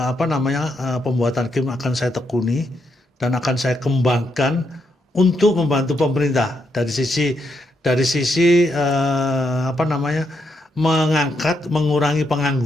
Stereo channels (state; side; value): normal; both; correlation 0.79